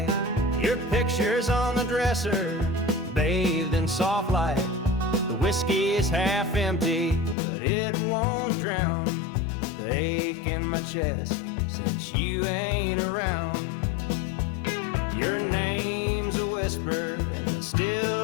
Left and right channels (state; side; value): drops out; right; at 7.4 s